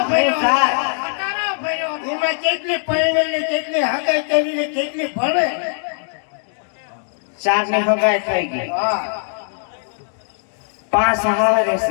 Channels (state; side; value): silent; right; digital silence